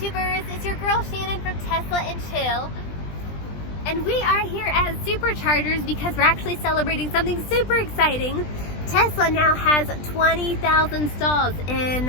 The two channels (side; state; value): right; late; 20 ms